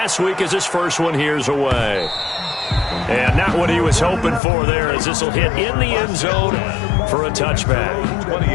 week as his first one here's away. And not what he was hoping for there as this will hit in the end zone for a touchback.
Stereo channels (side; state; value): right; drops out; at 4.4 s